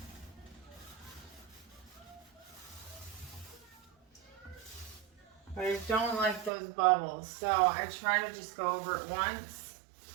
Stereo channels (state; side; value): drops out; left; at 6.5 s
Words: But I don't like those bubbles, so I try to just go over it once